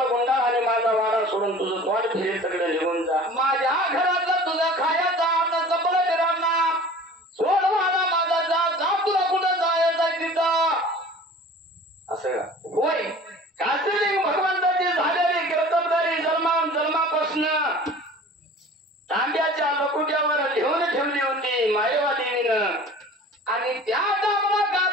गुंडा आणि माझा वाडा सोडून तुझं तोंड फिरे सगळं निघून जा माझ्या घरातलं तुझं खायचा आता जपलं वीरांना सोड मला माझा जा तुला कुठं जायचं तिथं असं का होय काशीलिंग भगवंताची झालेली कर्तबदारी जन्मापासून तांब्याच्या लकुट्यावर लिहून ठेवली होती मायेवा देवीनं आणि त्या दामला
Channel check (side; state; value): both; normal; correlation 0.43